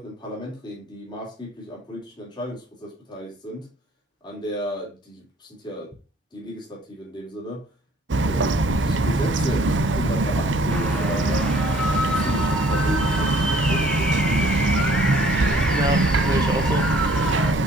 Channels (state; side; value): normal; both; correlation 0.58